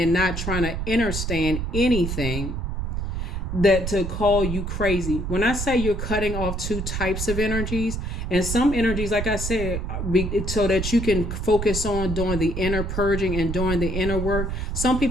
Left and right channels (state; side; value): noise; right; rumble, 3 dB below the sound